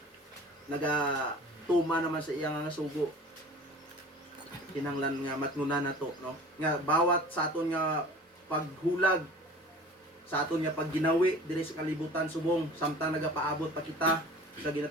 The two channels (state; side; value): normal; both; correlation 0.42